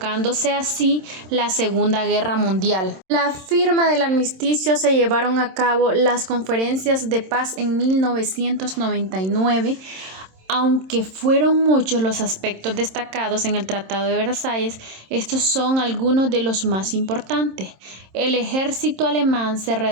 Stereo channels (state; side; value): late; left; 27 ms